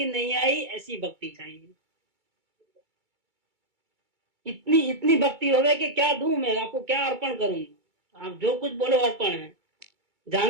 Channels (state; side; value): late; left; 2.3 ms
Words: नहीं आई ऐसी भक्ति चाहिए। इतनी इतनी भक्ति होवे कि क्या दूं मैं आपको, क्या अर्पण करूं, आप जो कुछ बोलो अर्पण है,